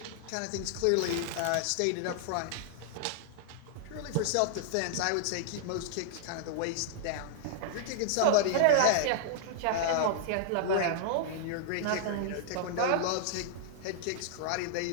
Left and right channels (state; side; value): different; both; correlation -0.01